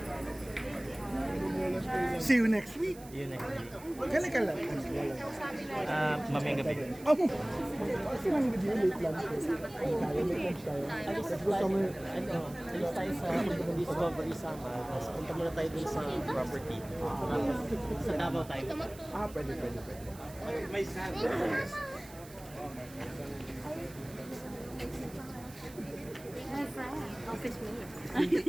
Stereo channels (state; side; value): noise; right; hiss, 19 dB below the sound